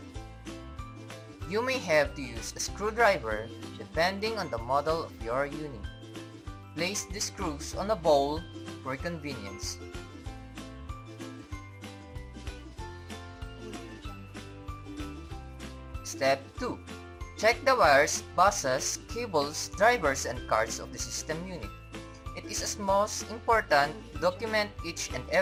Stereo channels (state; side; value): identical; both; correlation 1.00